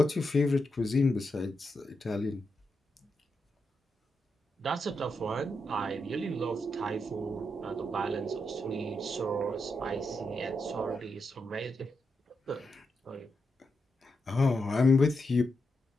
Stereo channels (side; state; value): both; normal; correlation 0.84